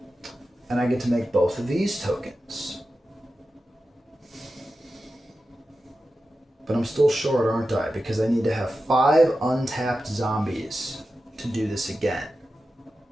and I get to make both of these tokens. But I'm still short, aren't I? Because I need to have 5 untapped zombies to do this again.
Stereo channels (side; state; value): both; normal; correlation 0.92